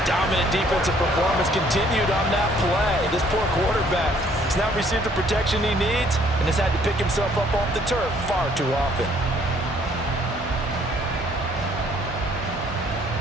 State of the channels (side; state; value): both; normal; correlation 0.62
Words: dominant defensive performance continued on that play. This poor quarterback has now received the protection he needs and has had to pick himself up off the turf far too often.